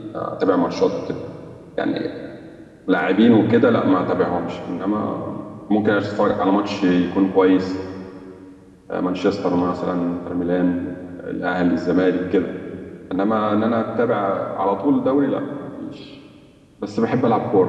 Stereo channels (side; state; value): both; identical; correlation 1.00